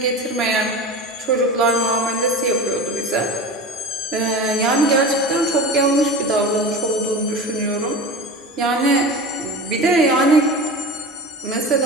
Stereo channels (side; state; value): both; normal; correlation 0.31